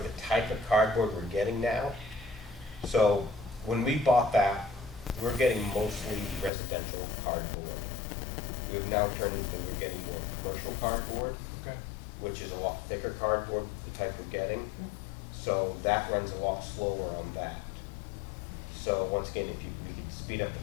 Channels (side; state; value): right; drops out; at 6.5 s